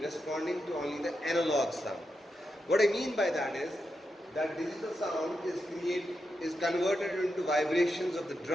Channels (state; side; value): normal; both; correlation 0.86